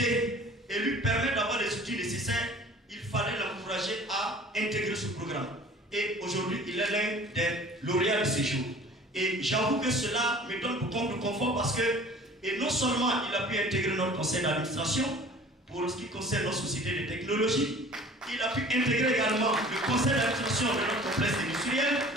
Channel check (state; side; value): normal; both; correlation 0.46